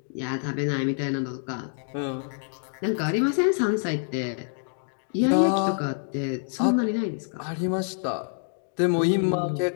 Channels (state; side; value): silent; right; digital silence